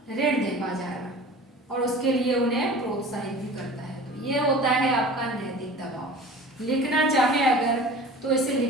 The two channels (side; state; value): both; normal; correlation 0.40